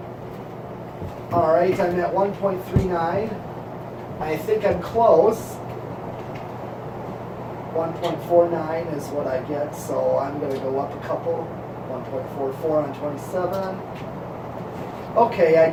Alright, I'm at 1.39. I think I'm close. 1.49 is what I get, so I'm going to go up a couple. 1.44 on 27. Okay, I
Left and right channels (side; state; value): both; identical; correlation 1.00